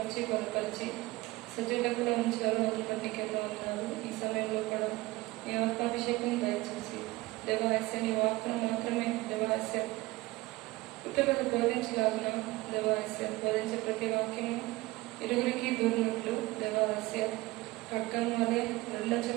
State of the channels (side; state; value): left; quieter; 20.2 dB